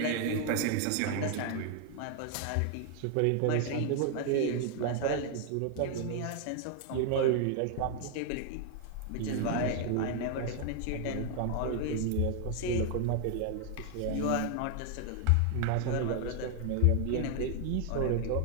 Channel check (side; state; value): both; different; correlation 0.00